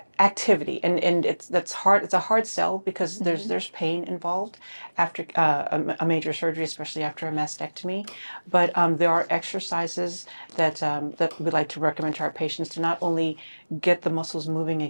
activity, and that's hard. It's a hard sell, because there's pain involved after a major surgery, especially after a mastectomy. But there are exercises that we like to recommend to our patients to not only get the muscles moving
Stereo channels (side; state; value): both; inverted; correlation -1.00